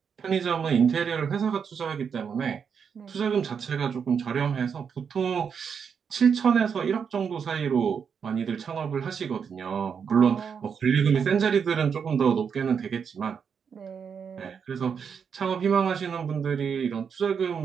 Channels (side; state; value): left; quieter; 6.7 dB